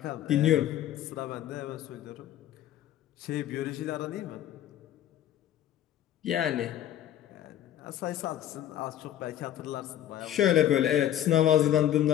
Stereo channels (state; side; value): quieter; right; 11.7 dB